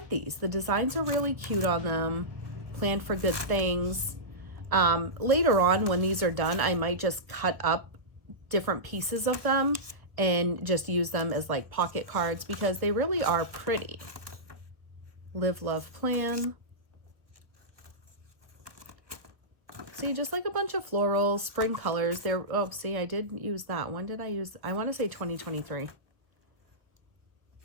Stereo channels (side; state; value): left; late; 1.3 ms